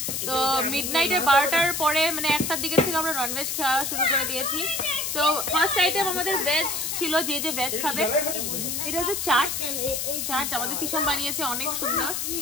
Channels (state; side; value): noise; left; hiss, 2 dB below the sound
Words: তো মিডনাইটের 12টার পরে মানে 1টার দিকের থেকে আমরা ননভেজ খাওয়া শুরু করে দিয়েছি। তো ফার্স্ট আইটেম আমাদের ভেজ ছিল, যে যে ভেজ খাবে। এটা হচ্ছে চাট। চাট আমাদের তিশাম বানিয়েছে, অনেক সুন্দর।